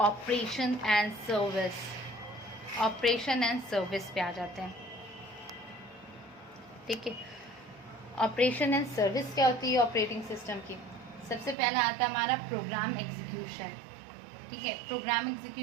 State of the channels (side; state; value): left; drops out; at 11.6 s